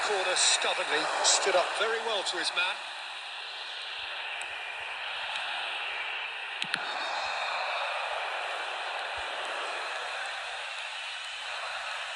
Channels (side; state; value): both; identical; correlation 1.00